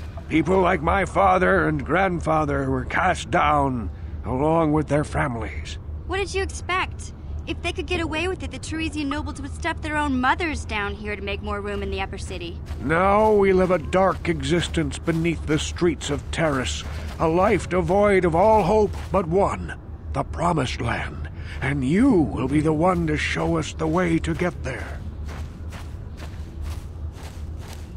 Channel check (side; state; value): both; identical; correlation 1.00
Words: People like my father and grandfather were cast down, along with their families. What did you expect? If they could get away with it, the Teresian nobles would stuff their own mothers down here to make more room in the upper city. Now we live a dark existence beneath the streets of Taris, a life devoid of all hope but one, the Promised Land. And you will be the one to show us the way to get there.